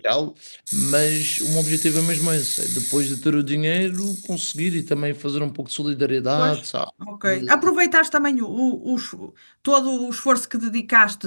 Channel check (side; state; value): both; inverted; correlation -1.00